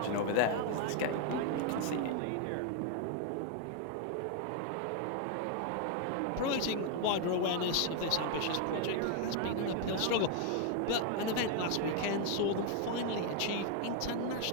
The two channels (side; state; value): both; different; correlation 0.01